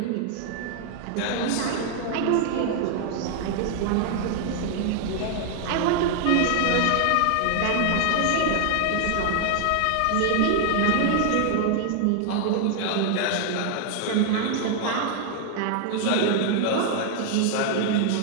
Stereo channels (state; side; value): different; both; correlation 0.00